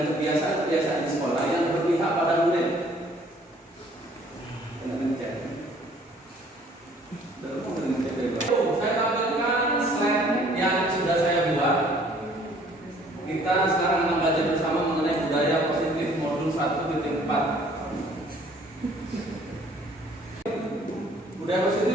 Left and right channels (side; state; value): both; normal; correlation 0.57